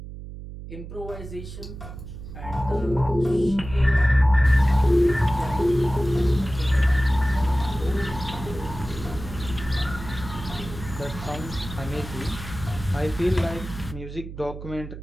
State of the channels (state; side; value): noise; right; hum, 11 dB below the sound